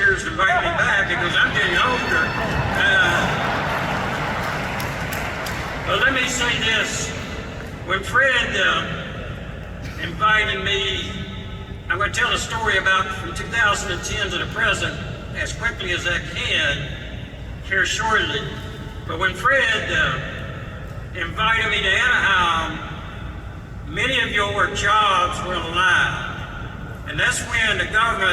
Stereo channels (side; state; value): both; identical; correlation 1.00